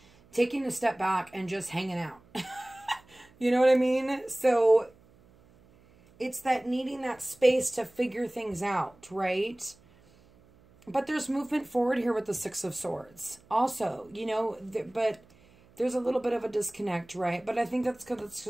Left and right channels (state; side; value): noise; right; hum, 28 dB below the sound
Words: taking a step back and just hanging out. You know what I mean? So it's that needing that space to figure things out, right? But there's movement forward here with the Six of Swords. Also, you know, but there's a little bit of a disconnect, right? But I think that's because